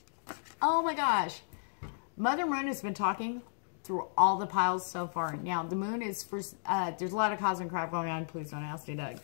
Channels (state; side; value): silent; right; digital silence